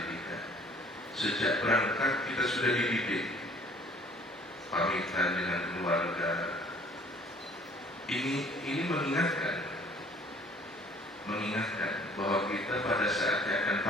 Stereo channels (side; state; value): both; normal; correlation 0.54